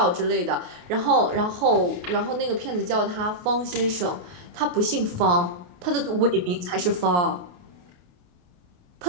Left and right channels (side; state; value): left; late; 28 ms